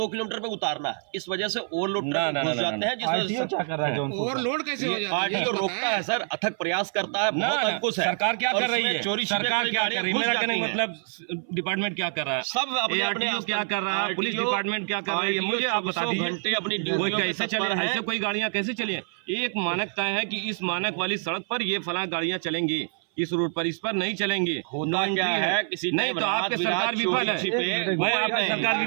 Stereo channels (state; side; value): silent; left; 58 dB below the other